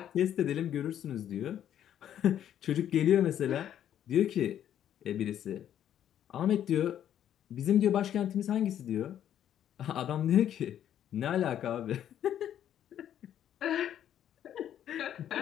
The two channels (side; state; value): right; quieter; 10.5 dB